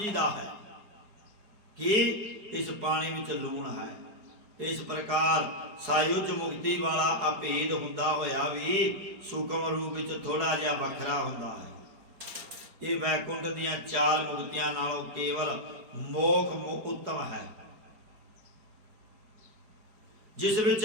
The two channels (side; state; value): left; late; 4.8 ms